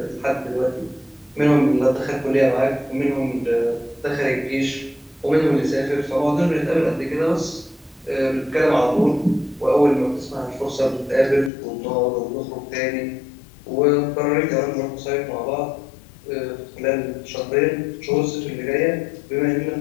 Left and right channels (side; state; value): right; drops out; at 11.5 s